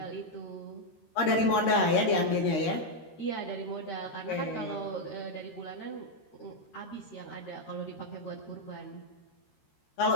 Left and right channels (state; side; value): late; right; 13 ms